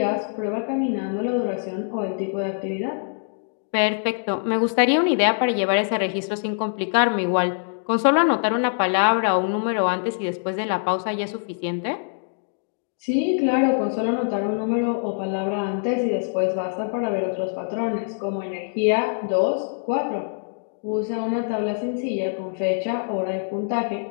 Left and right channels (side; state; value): right; silent; digital silence